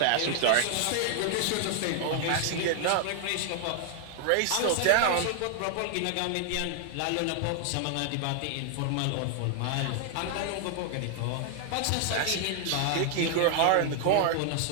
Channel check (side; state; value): both; different; correlation 0.00